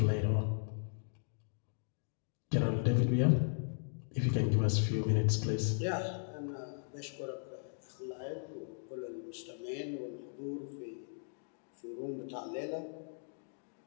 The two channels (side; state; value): right; silent; digital silence